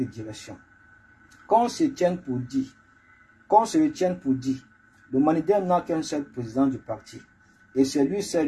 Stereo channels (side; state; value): both; identical; correlation 1.00